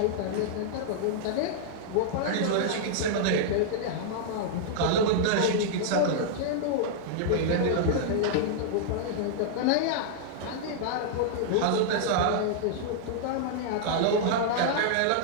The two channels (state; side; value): different; both; correlation -0.01